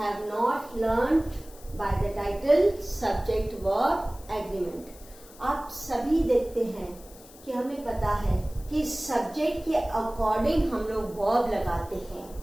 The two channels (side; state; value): left; noise; hiss, 21 dB below the sound